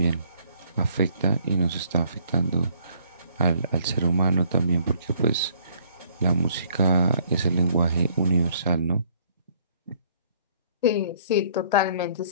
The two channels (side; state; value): both; inverted; correlation -0.63